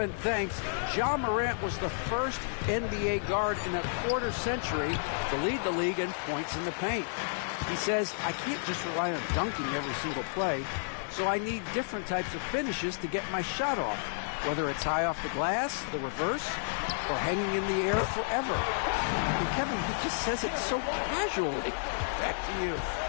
thanks. Ja Morant was the first NBA guard in a quarter century to lead the league in points in the paint. He says, I can't just rely on dunking every single play, so I need different types of finishes to get my shot off, whether it's high off the glass, the reverse, or hanging in the air forever. And Kevin, he just says it so casually. Back to you.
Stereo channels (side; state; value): right; silent; digital silence